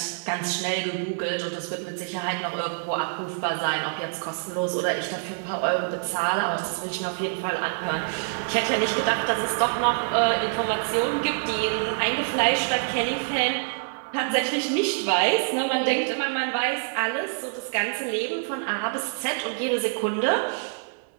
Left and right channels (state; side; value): silent; left; 59 dB below the other